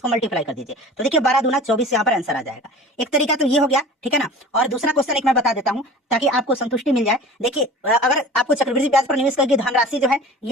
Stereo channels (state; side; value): normal; both; correlation 0.40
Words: मल्टीप्लाई कर दीजिए, तो देखिए 12 दूना 24 यहाँ पर आंसर आ जाएगा। एक तरीका तो ये हो गया, ठीक है ना। और दूसरा क्वेश्चन एक मैं बता देता हूँ ताकि आपको संतुष्टि मिल जाए। देखिए अगर आपको चक्रवृद्धि ब्याज पर निवेश करके धनराशि जो है